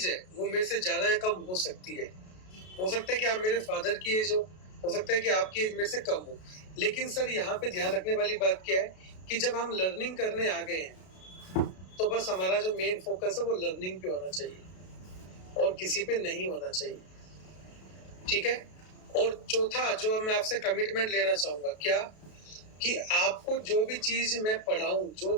है वो मेरे से ज्यादा या कम हो सकती है। हो सकता है कि आप मेरे फादर की एज हो सकता है कि आपकी एज मेरे से कम हो। लेकिन सर, यहाँ पे ध्यान रखने वाली बात क्या है कि जब हम लर्निंग करने आ गए हैं, तो बस हमारा जो मेन फोकस है वो लर्निंग पे होना चाहिए और किसी पे नहीं होना चाहिए। ठीक है। और चौथा जो मैं आपसे कमिटमेंट लेना चाहूंगा, क्या कि आपको जो भी चीज मैं पढ़ाऊं, जो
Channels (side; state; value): right; late; 33 ms